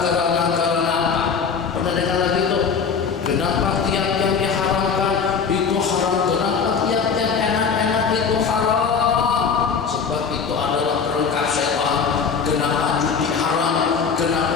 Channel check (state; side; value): quieter; right; 6.0 dB